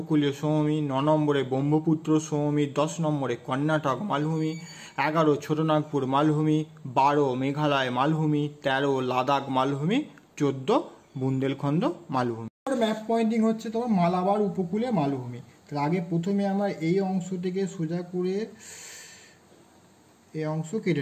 সমভূমি, ৯ নম্বরে ব্রহ্মপুত্র সমভূমি, ১০ নম্বরে কর্ণাটক মালভূমি, ১১ ছোটনাগপুর মালভূমি, ১২ মেঘালয় মালভূমি, ১৩ লাদাখ মালভূমি, ১৪ বুন্দেলখণ্ড মালভূমি। ম্যাপ পয়েন্টিং হচ্ছে তোমার মালাবার উপকূলে মালভূমি। তাহলে আগে প্রথমে আমরা এই অংশ থেকে সোজা করে এই অংশ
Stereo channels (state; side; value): identical; both; correlation 1.00